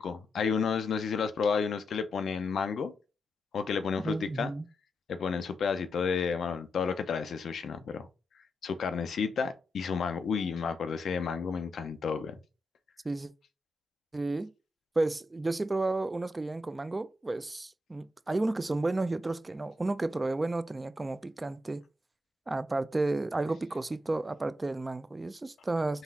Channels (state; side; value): normal; both; correlation 0.85